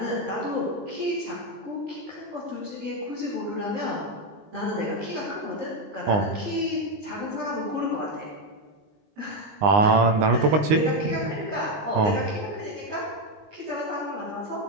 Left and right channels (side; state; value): left; late; 19 ms